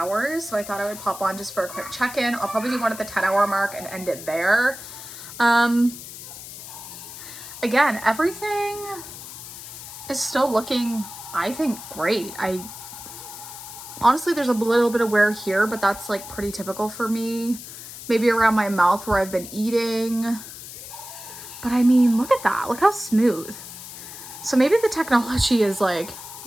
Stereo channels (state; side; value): noise; left; hiss, 13 dB below the sound